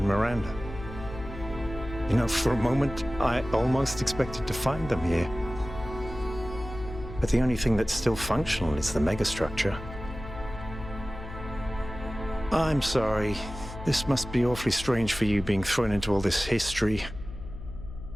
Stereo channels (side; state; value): left; noise; hum, 11 dB below the sound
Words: Miranda. You know, for a moment, I almost expected to find them here. But the only thing that's still functional is the megastructure. I'm sorry. This must be awfully strange for you being thrown into all this history.